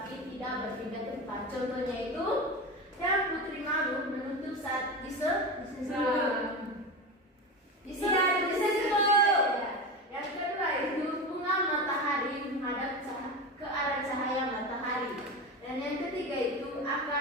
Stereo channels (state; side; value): normal; both; correlation 0.23